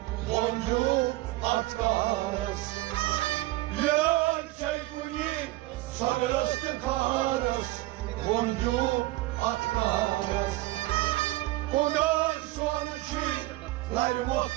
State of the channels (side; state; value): left; quieter; 18.7 dB